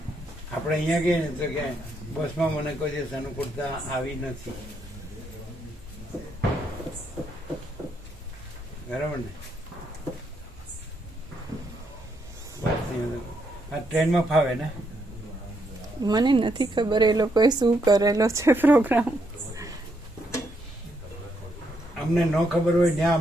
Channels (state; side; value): normal; both; correlation 0.77